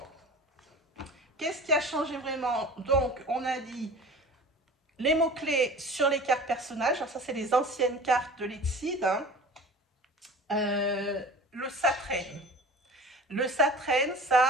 qu'est-ce qui a changé vraiment? Donc, on a dit les mots-clés sur les cartes personnages. Alors ça, c'est les anciennes cartes de l'Exceed. Hein. Le Satraine. Le Satraine, ça,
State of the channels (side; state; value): both; normal; correlation 0.39